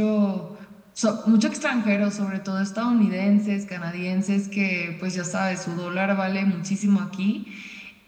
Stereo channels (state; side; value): identical; both; correlation 1.00